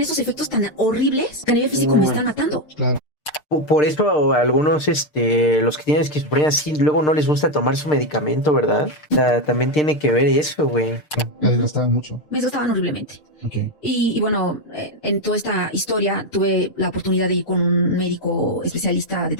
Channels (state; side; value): late; right; 6.6 ms